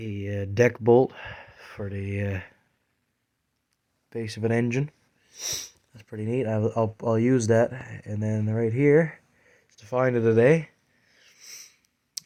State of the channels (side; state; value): both; identical; correlation 1.00